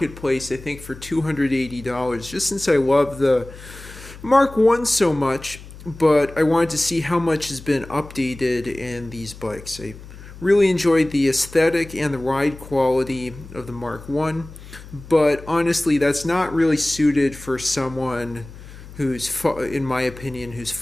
I think for $280, just since I love the Mark 1 so much, but I wanted to see how much has been updated in these bikes. I really enjoyed the aesthetic and the ride quality of the Mark 1, but honestly that's not really suited for someone who's, in my opinion, who's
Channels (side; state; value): left; noise; hum, 17 dB below the sound